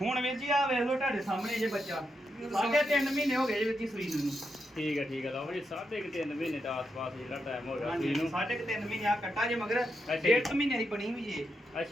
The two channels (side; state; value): both; normal; correlation 0.83